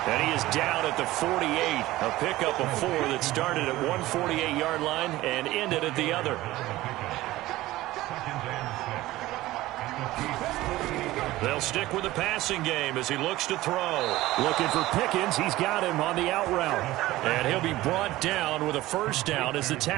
And he is down at the 48. A pickup of 4 that started at one 48-yard line and ended at the other. They'll stick with the passing game as he looks to throw. Looking for Pickens. He's got him on the out route. And he'll be brought down with a first down as the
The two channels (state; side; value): quieter; left; 17.1 dB